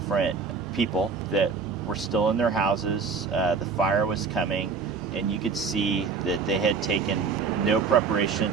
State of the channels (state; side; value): quieter; left; 5.1 dB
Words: people that were still in their houses. The fire was coming, and you could see that they had taken no